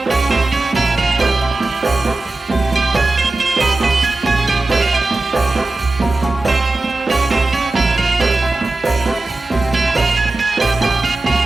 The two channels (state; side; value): quieter; left; 3.1 dB